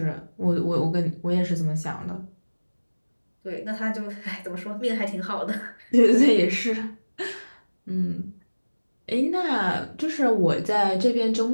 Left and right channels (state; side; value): inverted; both; correlation -1.00